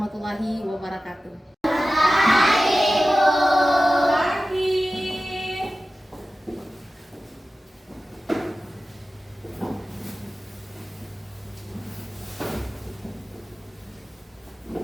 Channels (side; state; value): both; normal; correlation 0.95